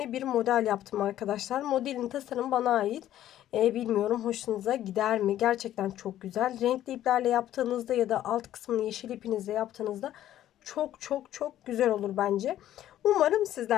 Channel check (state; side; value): quieter; right; 12.5 dB